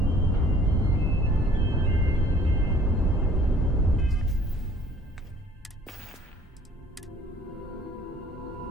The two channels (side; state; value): both; normal; correlation 0.55